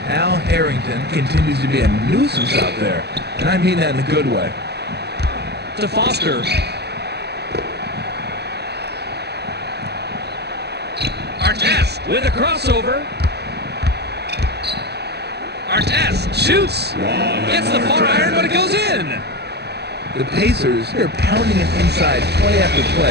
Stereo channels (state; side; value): late; left; 0.48 ms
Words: Al Harrington continues to be a nuisance out there, and I mean that in a good way. To Foster. Artest with a crossover. Artest shoots. Gets the far iron, but it goes in. The Pacers, they're pounding it inside play after